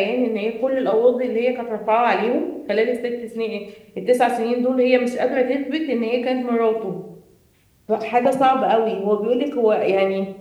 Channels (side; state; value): both; identical; correlation 1.00